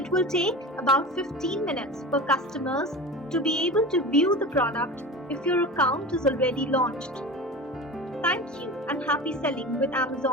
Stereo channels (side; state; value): both; normal; correlation 0.32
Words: will take about 15 minutes for customers to be able to view the product if your account is already launched. Thank you and happy selling with